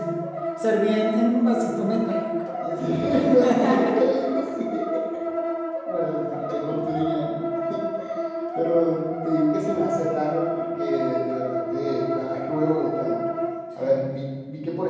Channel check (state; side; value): identical; both; correlation 1.00